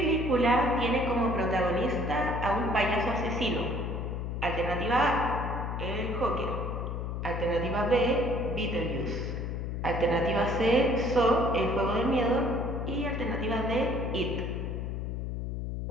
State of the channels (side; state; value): left; noise; hum, 3 dB below the sound